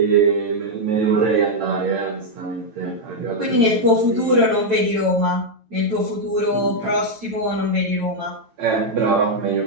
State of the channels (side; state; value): left; late; 9.1 ms